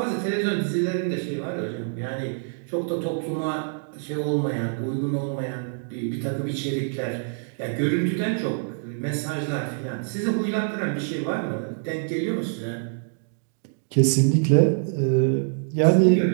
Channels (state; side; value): silent; left; digital silence